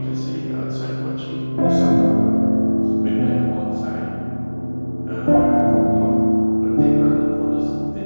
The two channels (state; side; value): inverted; both; correlation -1.00